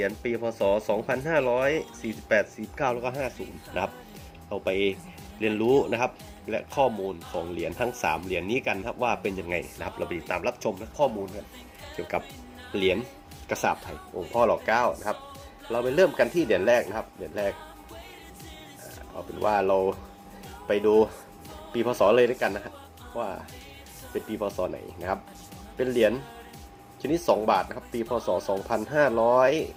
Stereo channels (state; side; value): identical; both; correlation 1.00